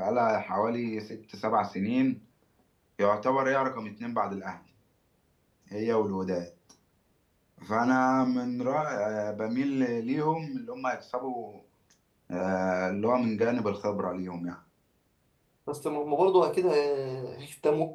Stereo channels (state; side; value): identical; both; correlation 1.00